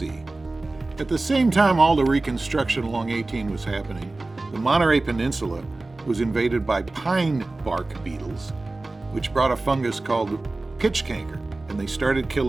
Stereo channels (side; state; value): left; quieter; 3.1 dB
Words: At the same time all the reconstruction along 18 was happening, the Monterey Peninsula was invaded by pine bark beetles, which brought a fungus called pitch canker, and they started